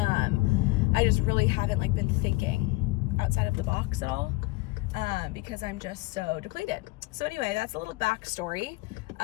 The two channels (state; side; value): quieter; right; 22.0 dB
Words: I just really haven't like been thinking outside of the box at all. Because I'm just so depleted. So anyway, that's a little backstory